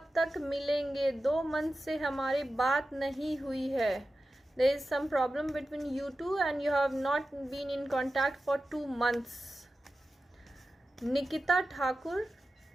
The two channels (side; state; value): both; normal; correlation 0.93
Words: तक मिलेंगे? 2 month से हमारी बात नहीं हुई है। There is some problem between you two and you have not been in contact for 2 months. Nikita Thakur,